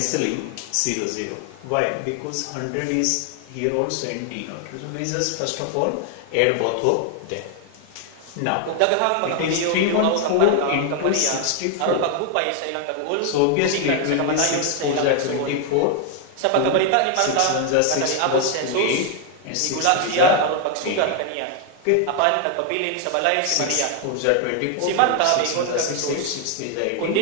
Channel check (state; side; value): different; both; correlation 0.00